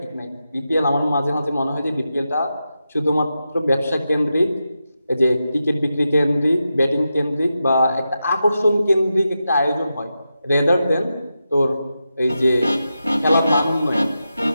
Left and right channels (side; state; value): both; inverted; correlation -0.89